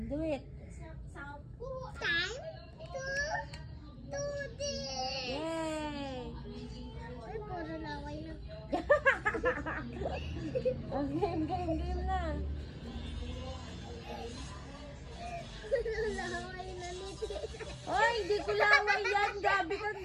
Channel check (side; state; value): both; identical; correlation 1.00